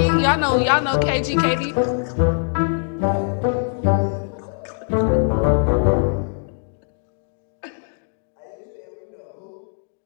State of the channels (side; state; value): right; silent; digital silence